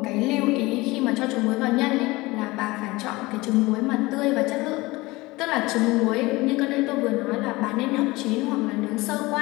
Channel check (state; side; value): quieter; right; 21.4 dB